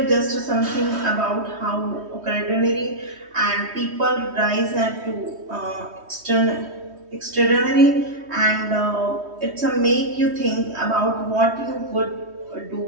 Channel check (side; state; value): left; late; 3.1 ms